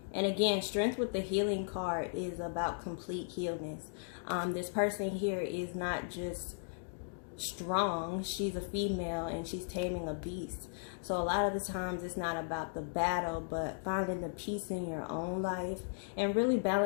And again, Strength with the healing card is about complete healness. This person here is not just strong, she's a female and she's taming a beast. So a lot of the times it's not about the battle, but finding the peace in your own life and really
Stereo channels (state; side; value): silent; right; digital silence